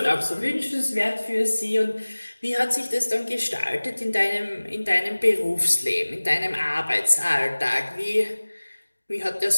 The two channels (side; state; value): both; inverted; correlation -1.00